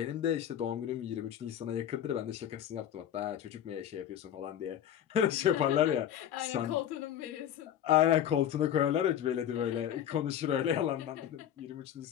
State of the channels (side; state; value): right; quieter; 10.3 dB